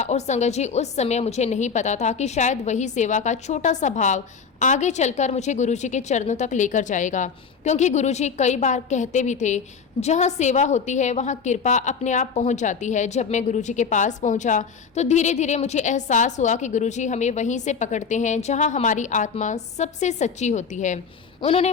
संगत जी, उस समय मुझे नहीं पता था कि शायद वही सेवा का छोटा सा भाव आगे चलकर मुझे गुरुजी के चरणों तक लेकर जाएगा। क्योंकि गुरुजी कई बार कहते भी थे, जहाँ सेवा होती है वहाँ कृपा अपने आप पहुँच जाती है। जब मैं गुरुजी के पास पहुँचा तो धीरे धीरे मुझे एहसास हुआ कि गुरुजी हमें वहीं से पकड़ते हैं जहाँ हमारी आत्मा सबसे सच्ची होती है। उन्होंने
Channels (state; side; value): quieter; right; 6.0 dB